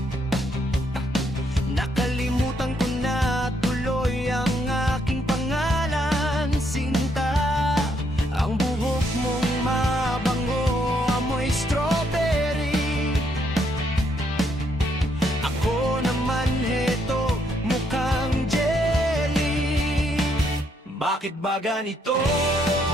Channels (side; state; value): both; normal; correlation 0.73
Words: Nakalimutan ko na tuloy ang aking pangalan, Sinta. Ang buhok mong mabango, amoy strawberry. Ako naman heto, mukhang jelly. Bakit ba ganito